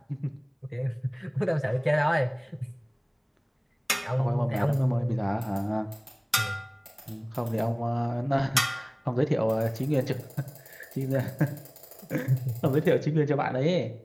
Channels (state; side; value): identical; both; correlation 1.00